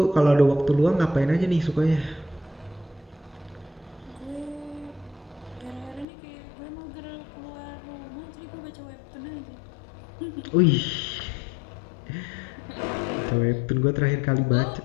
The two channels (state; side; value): drops out; right; at 6.1 s